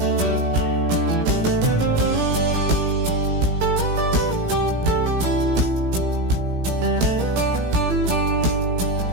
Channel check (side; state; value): left; late; 17 ms